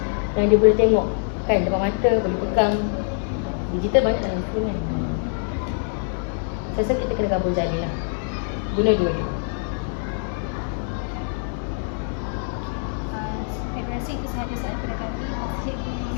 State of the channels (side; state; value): right; silent; 62 dB below the other